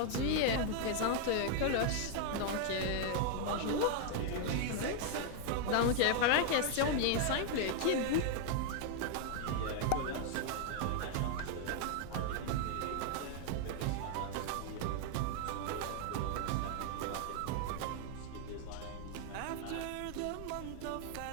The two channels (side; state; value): both; different; correlation 0.00